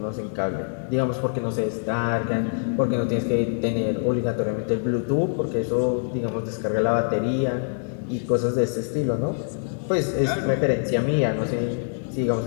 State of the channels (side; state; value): right; silent; digital silence